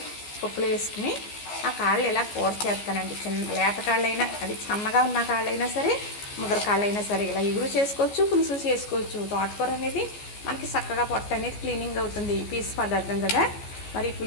పప్పులో వేసుకుని ఆ కాళ్ళు ఇలా కూర చేస్తానండి. చిన్న లేత కాళ్ళైనా, అది సన్నగా ఉన్న కాళ్ళైనా సరే, ముదర కాళ్ళైనా సరే ఇలా ఇగురు చేసుకోవచ్చు, పులుసు చేసుకోవచ్చు. తోటకూర అనేది మనకి చక్కగా పొట్ట అనేది క్లీనింగ్ అవుతుంది, పీసు పదార్థం కదా. మరి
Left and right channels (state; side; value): late; right; 14 ms